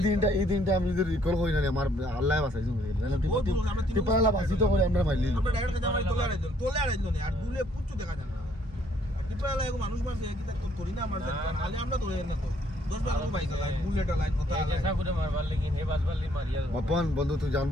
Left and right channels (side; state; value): both; normal; correlation 0.66